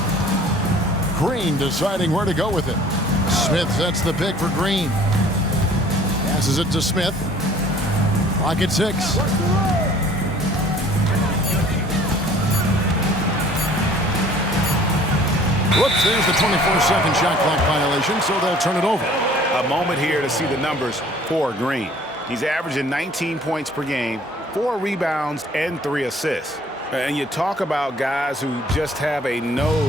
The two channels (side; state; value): both; normal; correlation 0.53